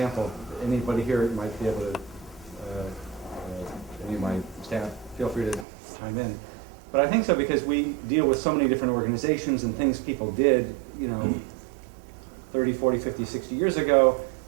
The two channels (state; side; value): drops out; left; at 5.7 s